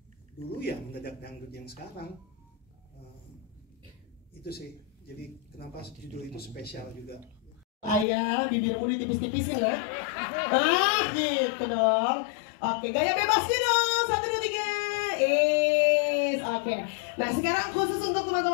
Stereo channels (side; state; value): right; drops out; at 8.1 s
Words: dulu ya mendadak dangdut yang sekarang, itu sih. Jadi kenapa judul itu spesial juga. Ayah, bibirmu ditipis-tipisin ya. Gitu dong. Oke, gaya bebas dong. 1, 2, 3. Oke. Nah sekarang khusus untuk